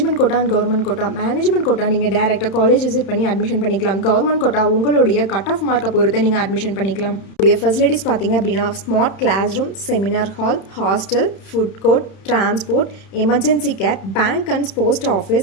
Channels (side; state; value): right; late; 31 ms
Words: quota and government quota. Management quota நீங்கள் டேரெக்டாக காலேஜ் விசிட் பண்ணி அட்மிஷன் பண்ணிக்கலாம். கவர்மெண்ட் கோட்டா உங்களுடைய கட் ஆஃப் மார்க்கை பொறுத்து நீங்கள் அட்மிஷன் பண்ணிக்கலாம். உடைய ஃபெசிலிட்டிஸ் பார்த்தீங்க அப்படின்னா, smart class room, seminar hall, hostel, food court, transport, emergency care, bank and post